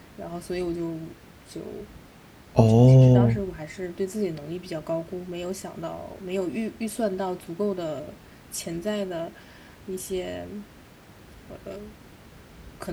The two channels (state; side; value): identical; both; correlation 1.00